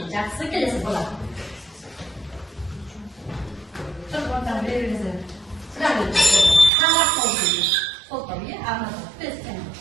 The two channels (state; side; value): drops out; left; at 6.7 s